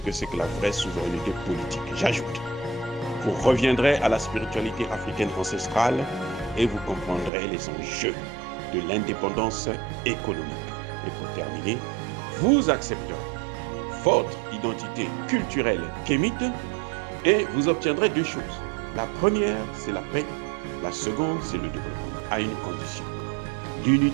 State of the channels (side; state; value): left; drops out; at 7.3 s